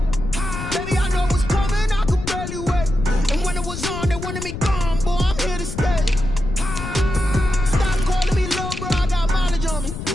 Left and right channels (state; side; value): noise; left; rumble, 7 dB below the sound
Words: Baby, I know what's coming, I could barely wait. And when it was on, they wanted me gone, boy, I'm here to stay. Stop calling me low, bro, I got mileage on me.